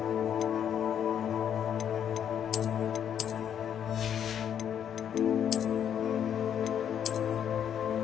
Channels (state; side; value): quieter; right; 9.0 dB